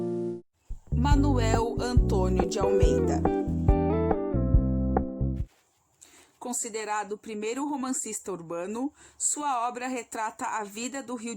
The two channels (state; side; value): identical; both; correlation 1.00